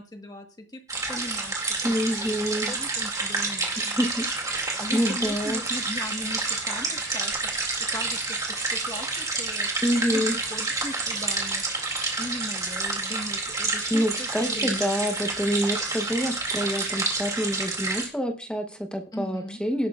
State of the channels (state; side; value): normal; both; correlation 0.39